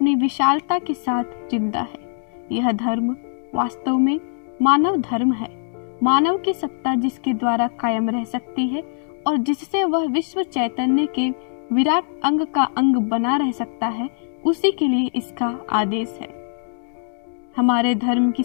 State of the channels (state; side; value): silent; right; digital silence